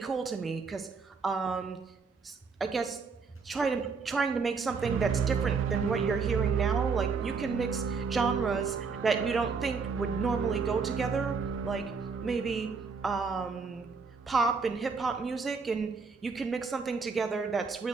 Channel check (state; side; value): quieter; left; 5.0 dB